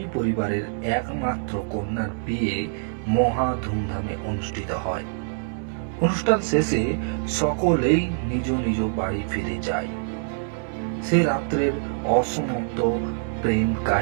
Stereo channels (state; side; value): silent; left; digital silence